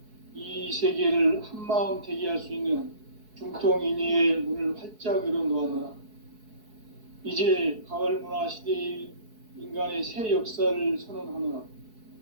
이 세계를 한마음 대기할 수 있는 중통인의의 문을 활짝 열어놓았노라. 이제 가을 문화 시대의 인간의 새 역사를 선언하노라.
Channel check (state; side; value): late; left; 4.7 ms